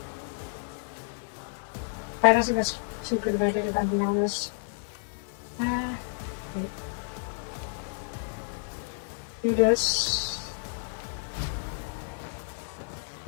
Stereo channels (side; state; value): right; silent; digital silence